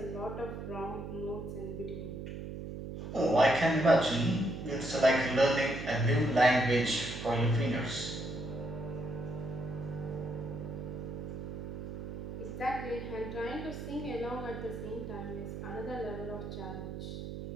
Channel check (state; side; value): noise; right; hum, 7 dB below the sound